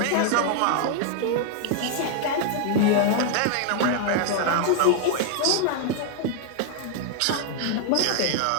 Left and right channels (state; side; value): different; both; correlation 0.00